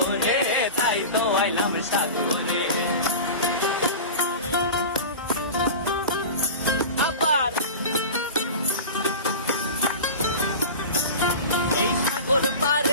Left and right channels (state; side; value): inverted; both; correlation -0.31